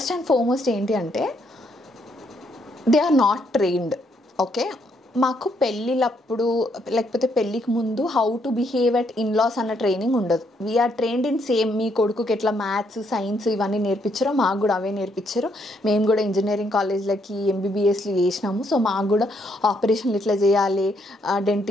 అండ్ ఫార్మోస్ట్ ఏంటి అంటే they are not trained. Okay, మాకు పెళ్ళిళ్ళప్పుడు లేకపోతే పెళ్ళికి ముందు how to behave at in-laws అన్న ట్రైనింగ్ ఉండదు. We're trained in same. మీ కొడుకుకి ఎట్లా మ్యాథ్స్, సైన్స్ ఇవన్నీ నేర్పించారో మాకు కూడా అవే నేర్పించారు. మేము కూడా ఇంజనీరింగ్ కాలేజ్లకి ఎంబీబీఎస్లు చేసినాము. సో మాకు కూడా ఆపరేషన్లు ఎట్లా చేయాలి,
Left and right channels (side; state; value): both; normal; correlation 0.73